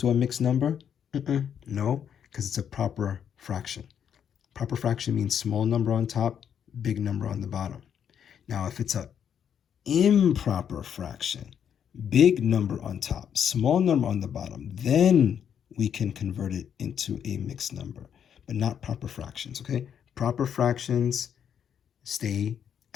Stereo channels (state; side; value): quieter; right; 8.4 dB